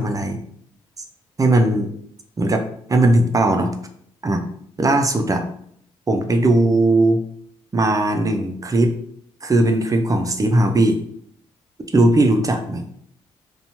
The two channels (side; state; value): both; normal; correlation 0.80